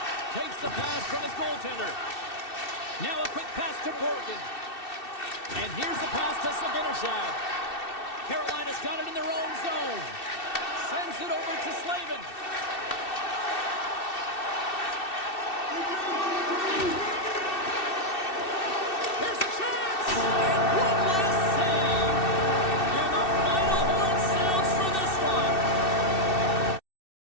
Takes the pass from his goaltender. Now a quick pass to Borgen. And here's the pass to Zibanejad. Carolina's got it in their own zone. Sends it over to Slavin.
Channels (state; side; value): late; right; 2.7 ms